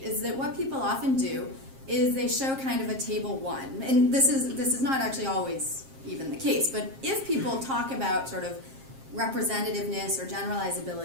is that what people often do is they show kind of a table one, and this is not actually always even the case, but if people talk about sort of representativeness or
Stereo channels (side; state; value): left; late; 7.5 ms